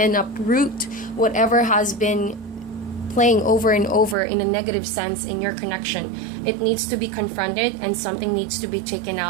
uproot whatever has been playing over and over in a negative sense in your connection, it needs to be confronted and something needs to be taken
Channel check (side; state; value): left; drops out; at 4.2 s